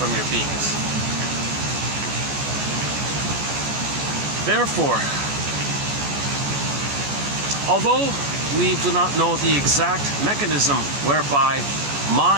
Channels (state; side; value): late; left; 14 ms